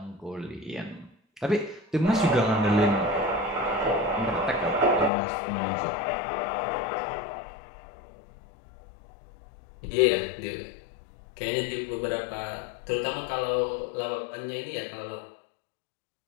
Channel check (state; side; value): drops out; right; at 5.1 s